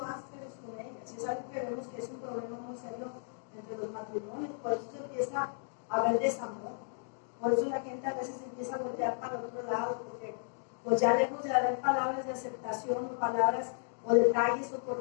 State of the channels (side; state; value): right; silent; digital silence